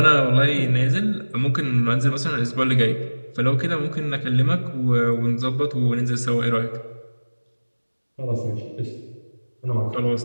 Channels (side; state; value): both; inverted; correlation -1.00